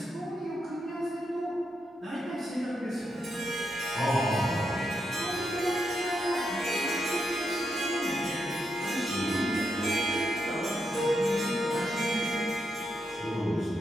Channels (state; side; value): normal; both; correlation 0.83